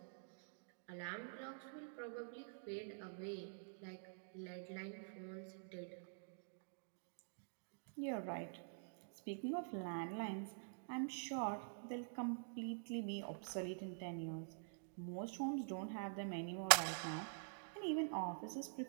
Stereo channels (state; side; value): silent; left; digital silence